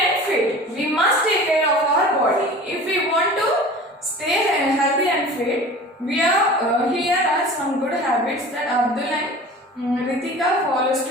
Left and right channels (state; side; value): normal; both; correlation 0.39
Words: and fit. We must take care of our body. If we want to stay healthy and fit, here are some good habits that Abdul and Ritika follows